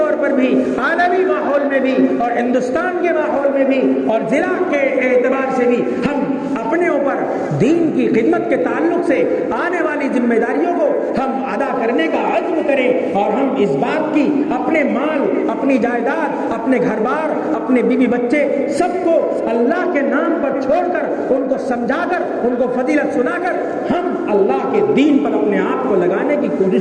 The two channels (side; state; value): both; identical; correlation 1.00